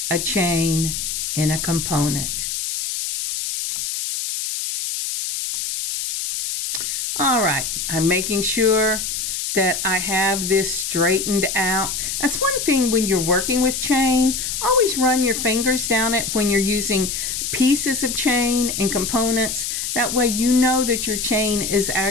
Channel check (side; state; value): left; noise; hiss, 3 dB below the sound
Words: a chain, and a component. All right, I'm making sure that I have this straightened out. That's one thing when you're working with chain. Always run your fingers down it when you're using pieces of chain and components. That way you know that your chain is